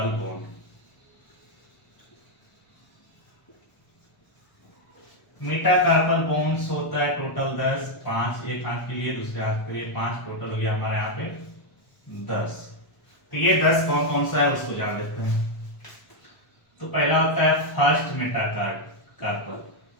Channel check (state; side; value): late; right; 1.0 ms